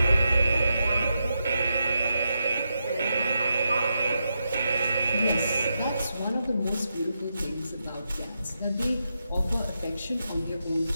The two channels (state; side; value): inverted; both; correlation -0.85